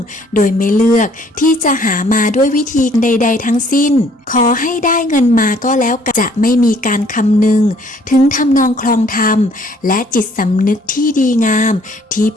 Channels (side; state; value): both; normal; correlation 0.61